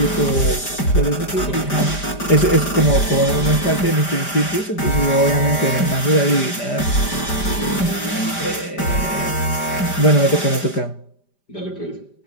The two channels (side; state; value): right; late; 5.0 ms